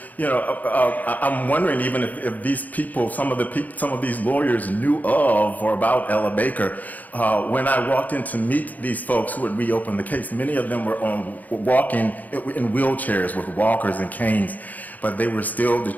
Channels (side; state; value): right; late; 0.080 ms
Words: you know, I'm wondering even if these people, some of these lawyers knew of or about Ella Baker. When I walked in to meet these folks who had reopened the case, many of them were walking in wheelchairs with walkers and canes. But they were still